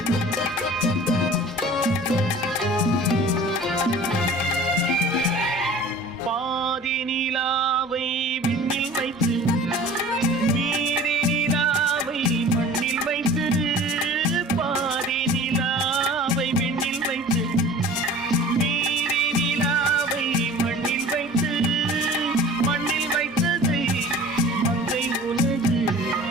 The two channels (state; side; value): normal; both; correlation 0.43